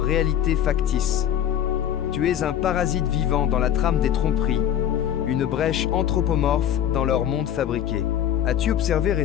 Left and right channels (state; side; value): quieter; right; 10.3 dB